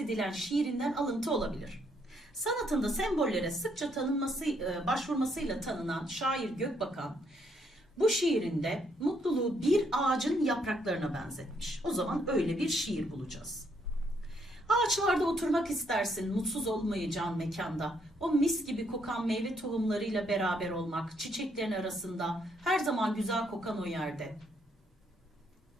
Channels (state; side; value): normal; both; correlation 0.72